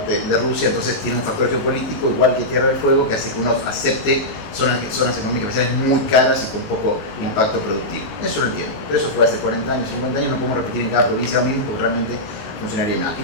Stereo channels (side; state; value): right; late; 19 ms